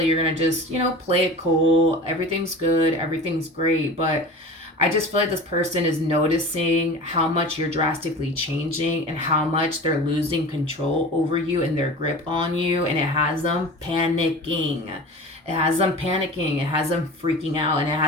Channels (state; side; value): normal; both; correlation 0.36